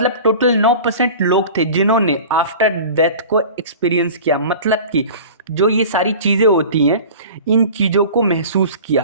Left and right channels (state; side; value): inverted; both; correlation -0.39